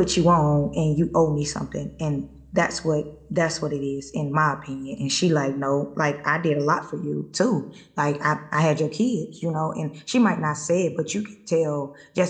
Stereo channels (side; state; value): both; identical; correlation 1.00